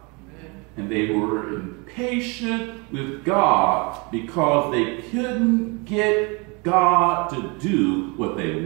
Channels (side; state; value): left; quieter; 30.0 dB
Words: And they were impatient with God because they couldn't get God to do what they